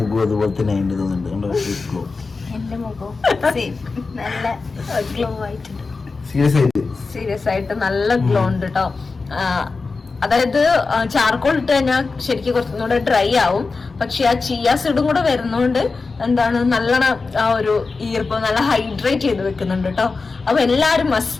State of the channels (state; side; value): quieter; right; 4.1 dB